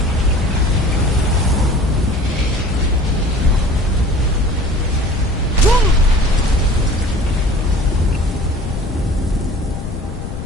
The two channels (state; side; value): noise; left; rumble, 8 dB below the sound